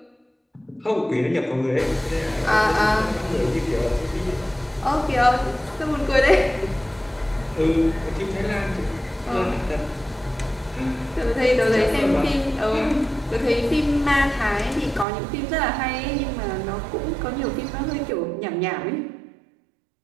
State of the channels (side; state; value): left; drops out; at 15.1 s